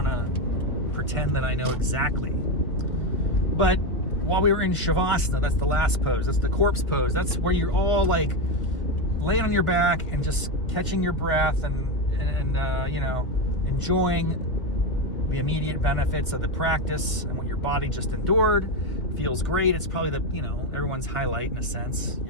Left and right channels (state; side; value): late; right; 1.6 ms